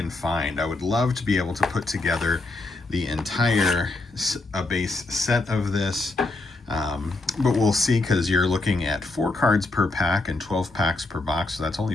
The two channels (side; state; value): right; quieter; 3.2 dB